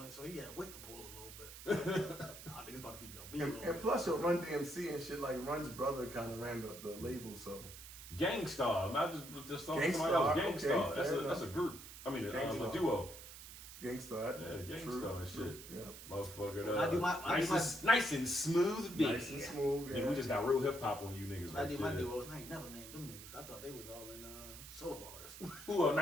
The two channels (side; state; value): right; noise; hiss, 13 dB below the sound